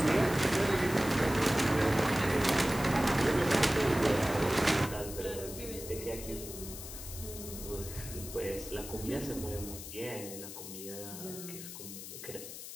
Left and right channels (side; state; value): left; noise; hiss, 11 dB below the sound